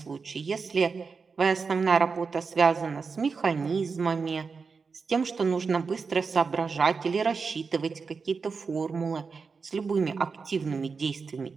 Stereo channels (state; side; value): quieter; left; 5.0 dB